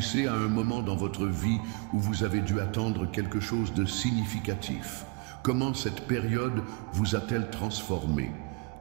à un moment dans votre vie où vous avez dû attendre quelque chose de significatif. Comment cette période vous a-t-elle transformé?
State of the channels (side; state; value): left; quieter; 28.5 dB